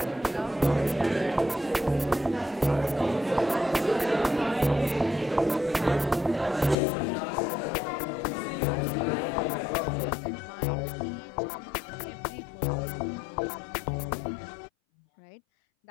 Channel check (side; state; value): right; drops out; at 6.8 s